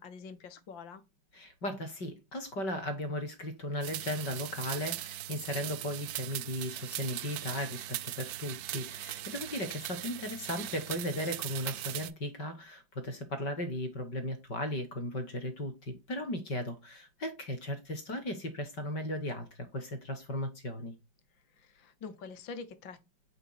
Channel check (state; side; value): late; right; 5.2 ms